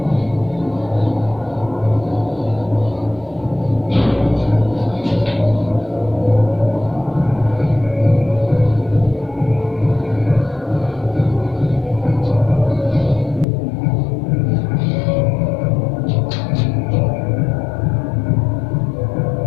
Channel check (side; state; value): right; drops out; at 13.5 s